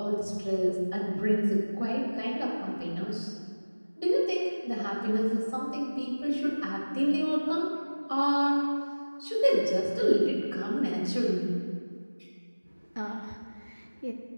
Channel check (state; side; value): inverted; both; correlation -1.00